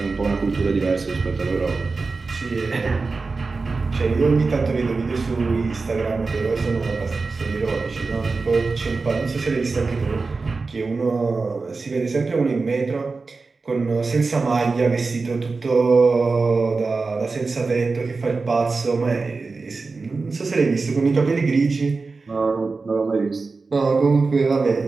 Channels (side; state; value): left; quieter; 4.1 dB